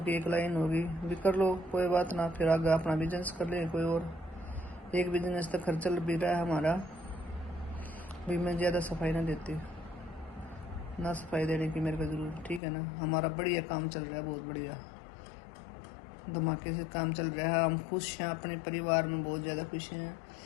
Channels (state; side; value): drops out; right; at 12.6 s